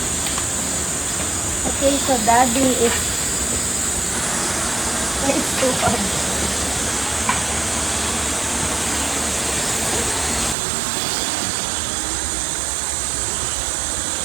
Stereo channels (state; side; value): drops out; left; at 10.6 s